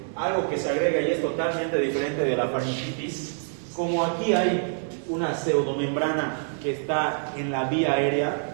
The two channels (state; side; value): silent; left; digital silence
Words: algo que se agrega y es totalmente diferente de la faringitis, como aquí hay una pseudomembrana que está en la vía